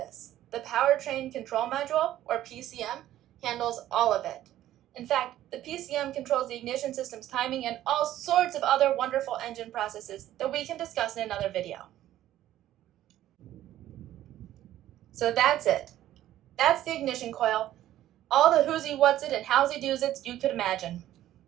The Powertrain Control Module, or PCM, handles all of it. In fact, the PCM controls the ignition system's timing and all sorts of other wonderful engine processes that we can discuss in another video. So that's it. That's the ignition coil. All the who's-y, what's-it, and how's-y, do's-its you could imagine.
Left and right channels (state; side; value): quieter; left; 13.2 dB